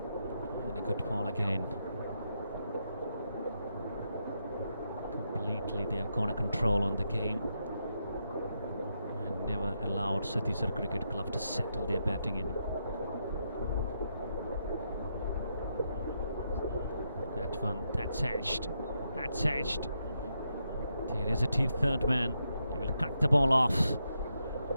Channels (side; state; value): both; inverted; correlation -0.82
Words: And a good ball again. Completely they have got a control on the game and never allowed Satisar Cricket Club to settle their batting in. That one, that's edged. That's edged. There is a third man. He will cut the ball off.